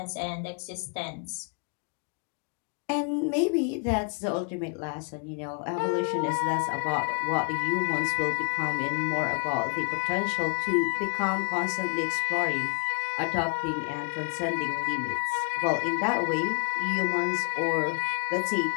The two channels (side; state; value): right; quieter; 39.1 dB